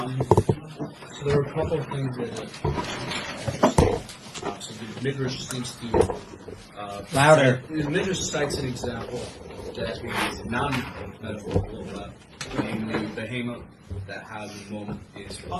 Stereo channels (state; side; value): identical; both; correlation 1.00